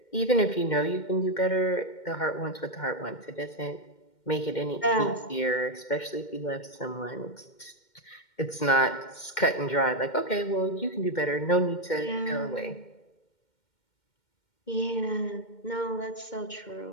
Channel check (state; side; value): late; right; 2.1 ms